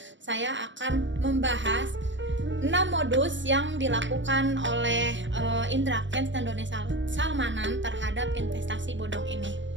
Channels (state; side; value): late; left; 0.54 ms